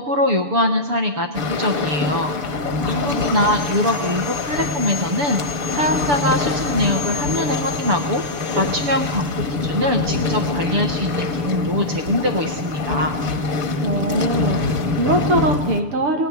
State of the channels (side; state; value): left; late; 6.9 ms